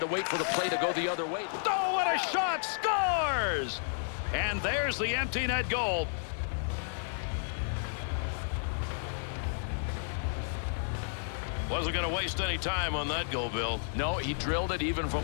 wait for the play to go the other way. Oh, what a shot. Scores! And there's the empty net goal. Wasn't going to waste any time on that goal, Bill. No, he drilled it even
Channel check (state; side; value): silent; right; digital silence